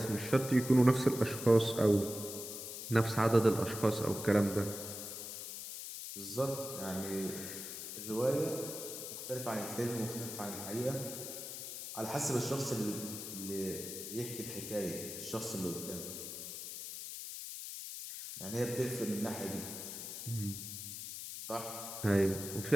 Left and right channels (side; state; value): left; noise; hiss, 8 dB below the sound